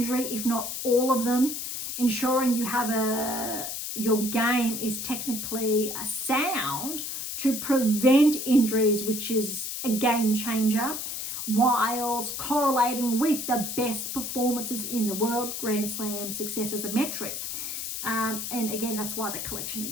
if not all of them, ensuring you have your game is technically sound to prevent injuries, which is a game changer, whilst correlating with the best performances in the world. Grand Slam success as a metric. And again, that's why the collection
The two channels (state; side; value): noise; left; hiss, 5 dB below the sound